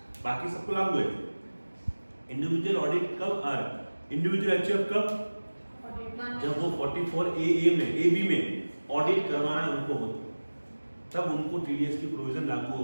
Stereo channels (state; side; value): inverted; both; correlation -1.00